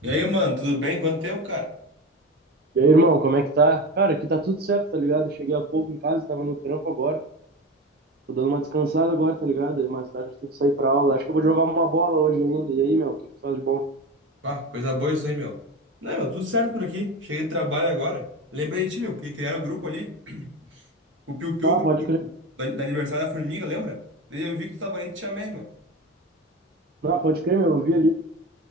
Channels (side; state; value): both; normal; correlation 0.26